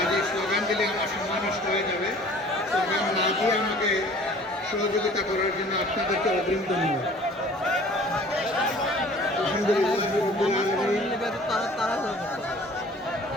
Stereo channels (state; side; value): normal; both; correlation 0.49